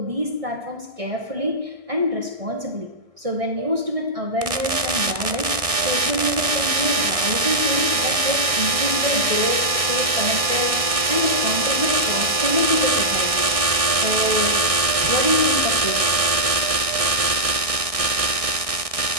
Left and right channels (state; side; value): late; left; 1.6 ms